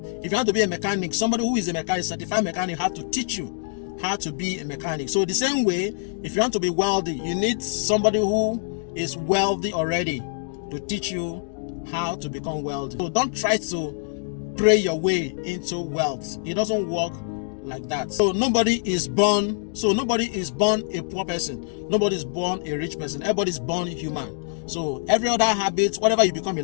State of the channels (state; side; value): silent; right; digital silence